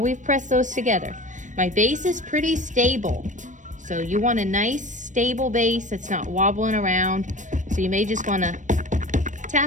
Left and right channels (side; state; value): left; late; 0.37 ms